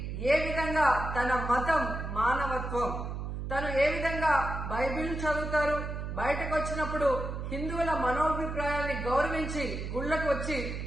ఏ విధంగా తన మతం మానవత్వం, తను ఏ విధంగా బైబిల్ చదువుతారు, బయటకు వచ్చినప్పుడు హిందువుల మనోభిప్రాయాల్ని గౌరవించి గుళ్లకు వచ్చి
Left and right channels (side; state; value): right; noise; hum, 5 dB below the sound